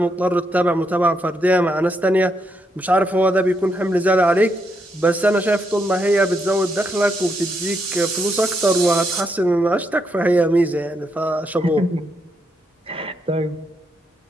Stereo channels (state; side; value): normal; both; correlation 0.79